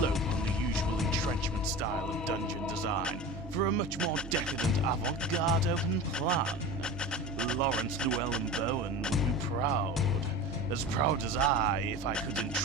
on the usual entrenchment style of dungeon design for a much more decadent avant-garde open plan. Lawrence Llewellyn Bowen would be proud as I, if I could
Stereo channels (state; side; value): normal; both; correlation 0.32